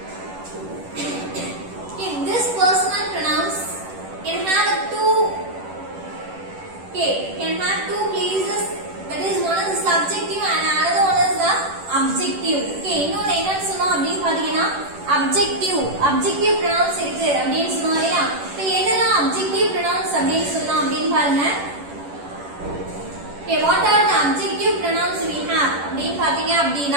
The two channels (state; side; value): late; left; 10 ms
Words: Okay, this personal pronouns can have two places, that is one is the subjective and another one is the objective. Okay, இன்னொரு என்னன்னு சொன்னோம் அப்படினு பாத்தீங்கன்னா objective pronouns இருக்கு அப்படினு சொன்னோம் இல்லையா. இப்போ எதெல்லாம் objective pronouns அப்படினு சொல்லலாம் அப்படினு பாருங்க. Okay, what are the objective pronouns we have அப்படினு பாத்தீங்க